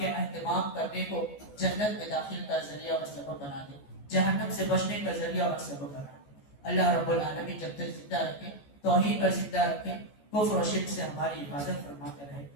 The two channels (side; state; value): right; late; 14 ms